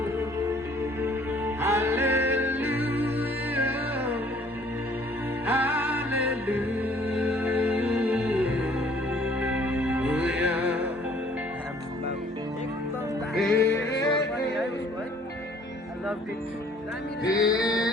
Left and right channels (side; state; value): both; normal; correlation 0.57